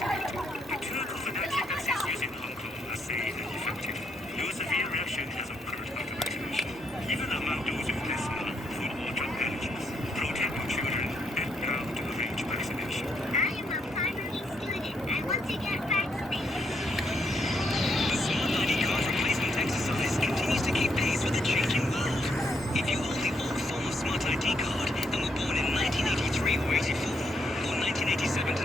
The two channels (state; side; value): normal; both; correlation 0.76